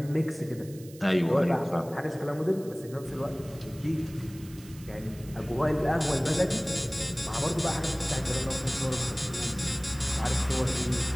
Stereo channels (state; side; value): noise; right; hiss, 21 dB below the sound